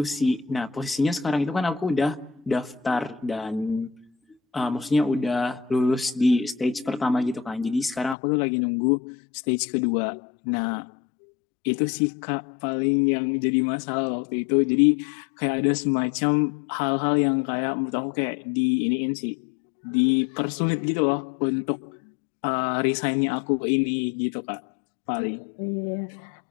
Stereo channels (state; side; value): drops out; right; at 8.2 s